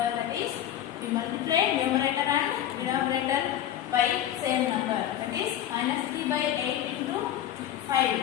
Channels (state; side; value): quieter; right; 11.3 dB